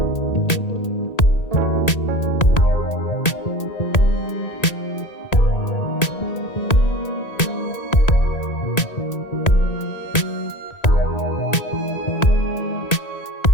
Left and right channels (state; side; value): late; right; 1.9 ms